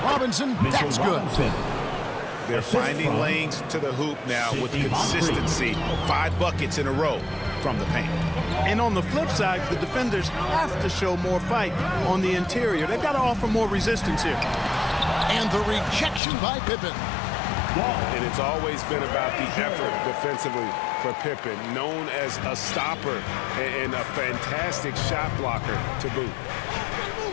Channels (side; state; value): right; drops out; at 16.2 s